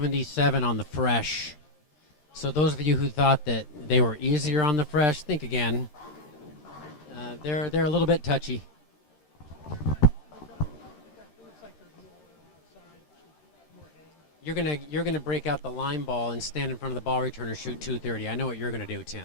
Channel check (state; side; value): late; right; 13 ms